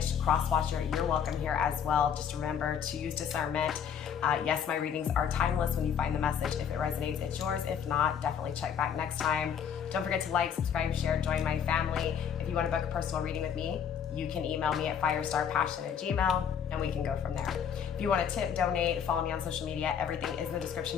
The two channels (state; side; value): quieter; right; 8.0 dB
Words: Cross-watcher, you're welcome here as well. Just remember to use discernment. Yes, my readings are timeless when you find the message. If it resonates, it's yours. If not, definitely check back next time. Don't forget to like, subscribe, share, join my family. If you want to book a personal reading with me, you can email me at firestarpassion@gmail.com and we can go from there. If you want to tip, donate, follow me on social media, everything is in the